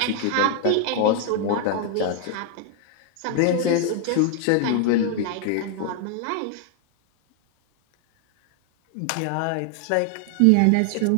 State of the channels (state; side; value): different; both; correlation 0.00